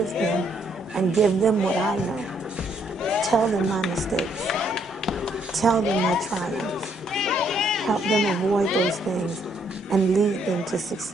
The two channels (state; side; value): normal; both; correlation 0.70